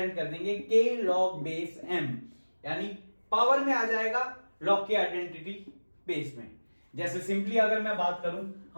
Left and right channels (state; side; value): inverted; both; correlation -1.00